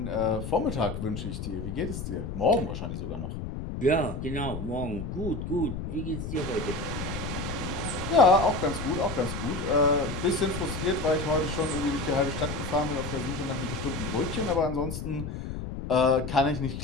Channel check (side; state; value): left; noise; rumble, 6 dB below the sound